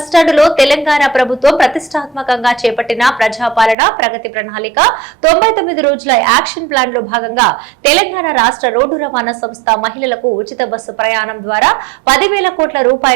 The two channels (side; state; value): left; drops out; at 3.8 s